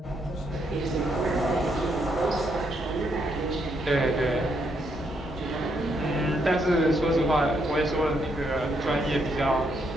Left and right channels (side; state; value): both; normal; correlation 0.76